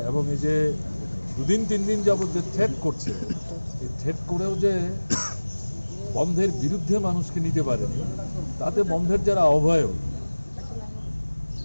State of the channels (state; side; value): inverted; both; correlation -1.00